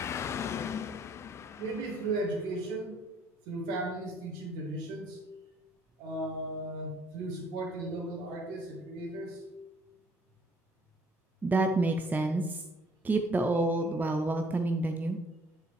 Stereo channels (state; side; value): normal; both; correlation 0.61